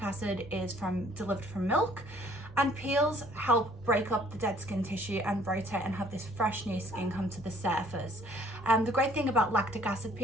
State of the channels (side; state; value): right; noise; rumble, 24 dB below the sound